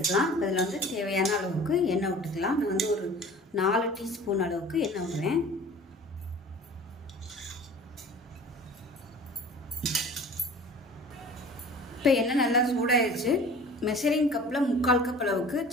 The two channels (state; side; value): normal; both; correlation 0.44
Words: இதில் வந்து தேவையான அளவுக்கு எண்ணெய் விட்டுக்கலாம். நான் வந்து ஒரு 4 டீஸ்பூன் அளவுக்கு எண்ணெய் விடுறேன். இப்போ எண்ணெய் நல்லா சூடாகிடுச்சு. மெஷரிங் கப்பில் 3/4 கப் அளவுக்கு